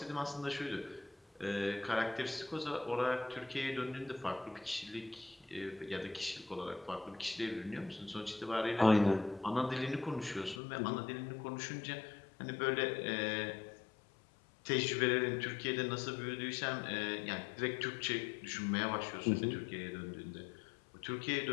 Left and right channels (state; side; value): drops out; right; at 10.6 s